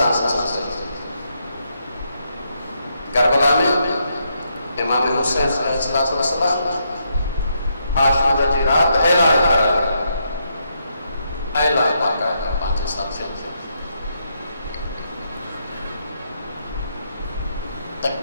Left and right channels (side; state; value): both; inverted; correlation -0.78